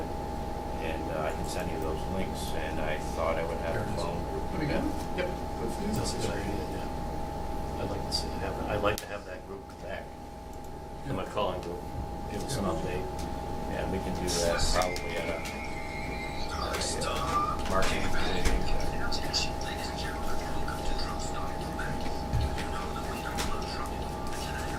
And I can send you those links, and I thought I would have There a it is. phone group. There we go. Yep. That's a good idea, yeah. I'd like to have that group come back, the McCullen group, give us an update. And we can do that probably at a marketing meeting.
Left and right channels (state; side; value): identical; both; correlation 1.00